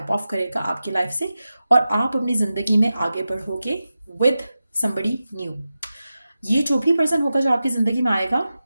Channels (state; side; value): inverted; both; correlation -0.93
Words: ऑफ करेगा आपकी लाइफ से और आप अपनी ज़िंदगी में आगे बढ़ोगे विद समबडी न्यू। ये जो भी पर्सन होगा जो आपकी ज़िंदगी में आएगा,